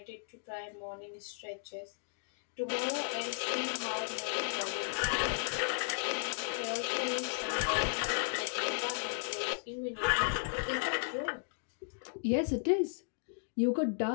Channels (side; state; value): right; silent; digital silence